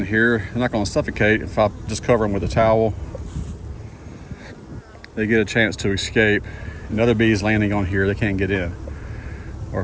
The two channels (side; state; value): both; identical; correlation 1.00